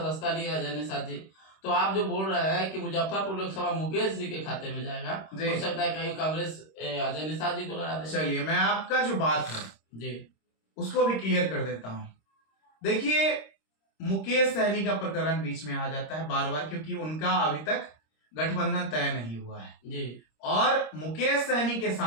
लिया अजय निषाद जी। तो आप जो बोल रहे हैं कि मुजफ्फरपुर लोकसभा मुकेश जी के खाते में जाएगा, जी। हो सकता है कहीं कांग्रेस अजय निषाद जी को लड़ा दे। चलिए मैं आपका जो बात है जी उसको भी क्लियर कर देता हूं। देखिए मुकेश सहनी का प्रकरण बीच में आ जाता है बार बार, क्योंकि उनका अभी तक गठबंधन तय नहीं हुआ है जी और मुकेश सहनी के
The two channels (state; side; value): late; right; 26 ms